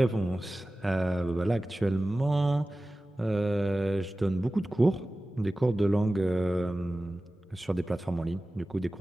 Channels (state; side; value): normal; both; correlation 0.96